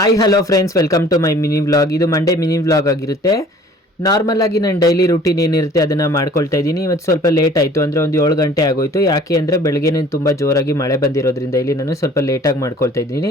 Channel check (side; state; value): both; normal; correlation 0.51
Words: hello friends, welcome to my mini vlog. ಇದು Monday mini vlog ಆಗಿರುತ್ತೆ. Normal ಆಗಿ ನಾನು ಡೈಲಿ ರೂಟೀನ್ ಏನಿರುತ್ತೆ ಅದನ್ನು ಮಾಡ್ಕೊಳ್ತಾ ಇದ್ದೀನಿ. ಇವತ್ತು ಸ್ವಲ್ಪ ಲೇಟ್ ಆಯಿತು, ಅಂದರೆ ಒಂದು 7 ಗಂಟೆ ಆಗೋಯಿತು. ಯಾಕೆ ಅಂದರೆ ಬೆಳಗ್ಗೆನೇ ತುಂಬ ಜೋರಾಗಿ ಮಳೆ ಬಂದಿರೋದ್ರಿಂದ ಇಲ್ಲಿ ನಾನು ಸ್ವಲ್ಪ ಲೇಟಾಗಿ ಮಾಡ್ಕೊಳ್ತಾ